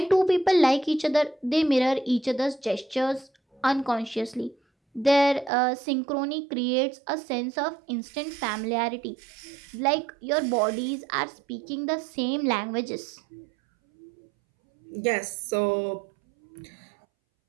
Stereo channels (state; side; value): drops out; left; at 5.5 s